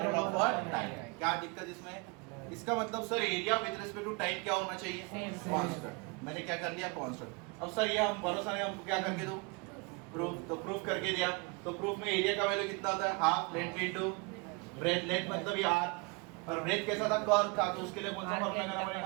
of what? Time। क्या दिक्कत इसमें? इसका मतलब sir area with respect to time क्या होना चाहिए? कांस्टेंट। मैंने क्या कर लिया? कांस्टेंट। अब सर ये हम भरोसा नहीं, हमको क्या करके दो? प्रूफ। तो प्रूफ करके दिया। तो प्रूफ में एरिया का वैल्यू कितना होता है? Half length into breath. Length मतलब ये r, पर ब्रेथ कैसा था? कर्व था। तो उसके लिए कौन सा फार्मूला लगाना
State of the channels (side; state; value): left; quieter; 30.0 dB